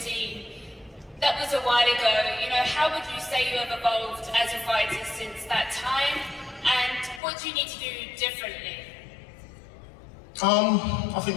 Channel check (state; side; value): drops out; right; at 7.2 s